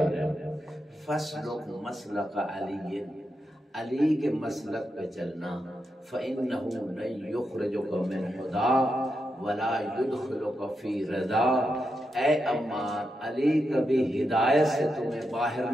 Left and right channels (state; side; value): normal; both; correlation 0.86